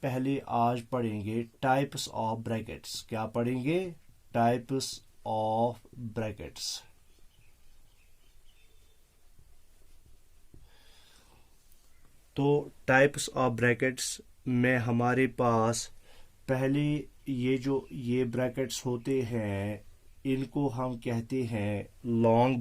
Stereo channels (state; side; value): identical; both; correlation 1.00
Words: पहले आज पढ़ेंगे टाइप्स ऑफ ब्रैकेट्स। क्या पढ़ेंगे? Types of brackets. तो टाइप्स ऑफ ब्रैकेट्स में हमारे पास पहले ये ब्रैकेट्स होते हैं, इनको हम कहते हैं लॉन्ग